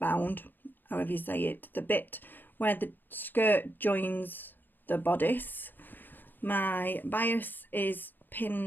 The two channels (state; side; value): late; right; 0.091 ms